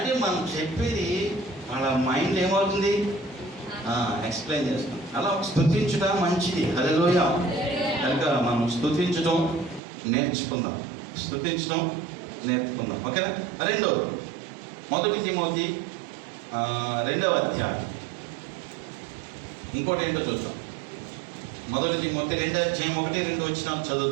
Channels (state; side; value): drops out; left; at 9.8 s